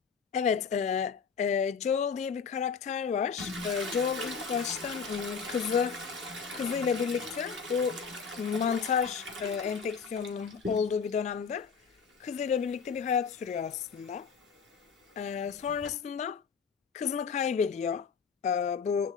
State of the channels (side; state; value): right; quieter; 6.0 dB